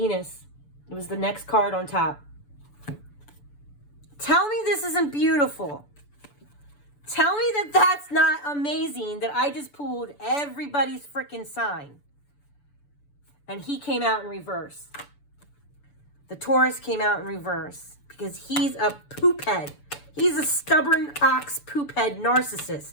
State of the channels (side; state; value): right; late; 6.9 ms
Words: It was the next card on top. Tell me this isn't beautiful. Tell me that that's not amazing that I just pulled everybody's freaking sign. And he came out in reverse. The Taurus came out in reverse because he's a poop head. He's a stubborn ox poop head